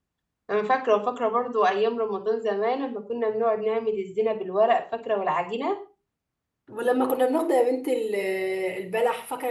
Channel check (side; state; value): both; identical; correlation 1.00